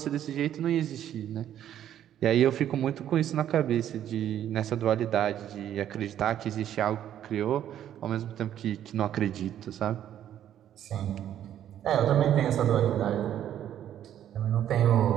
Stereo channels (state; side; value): quieter; left; 10.9 dB